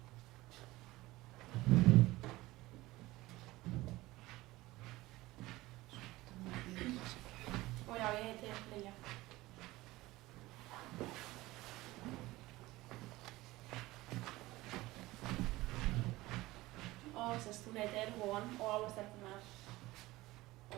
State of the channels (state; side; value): quieter; left; 19.0 dB